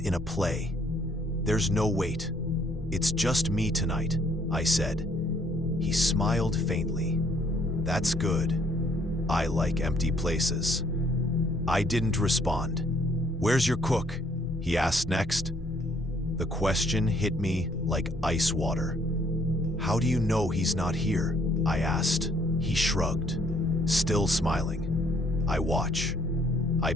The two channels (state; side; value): normal; both; correlation 0.65